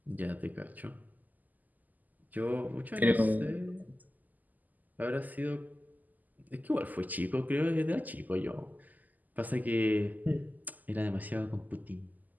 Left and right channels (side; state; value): left; late; 0.082 ms